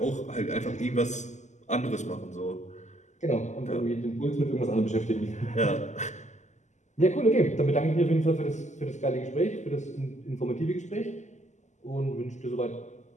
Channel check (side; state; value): right; late; 0.34 ms